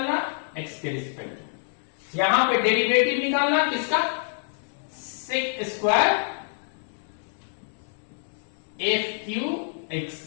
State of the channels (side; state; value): right; silent; digital silence